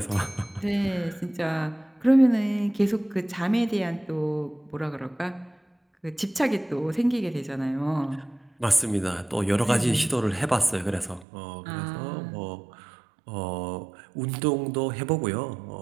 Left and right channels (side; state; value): left; drops out; at 11.2 s